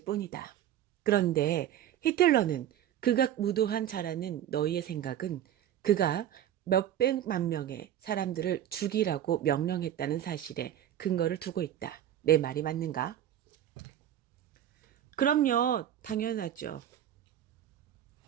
뿐이다. 그런데 히틀러는 극악무도한 자라는 너희의 생각은 그가 몇백만 명의 사람들을 죽이라고 명령했다는 사실에 근거를 두고 있다. 내 말이 맞는가? 그럼요, 당연하죠.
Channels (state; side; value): quieter; left; 11.1 dB